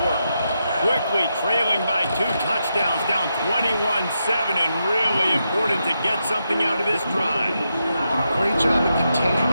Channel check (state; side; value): inverted; both; correlation -0.85